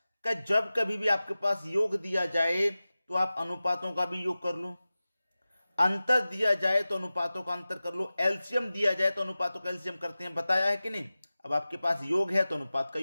कि जब कभी भी आपके पास योग दिया जाए तो आप अनुपातों का भी योग कर लो, अंतर दिया जाए तो अनुपातों का अंतर कर लो, एलसीएम दिया जाए तो अनुपातों का एलसीएम करते हैं, बताया है कि नहीं। अब आपके पास योग है तो अनुपात का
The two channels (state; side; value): inverted; both; correlation -0.96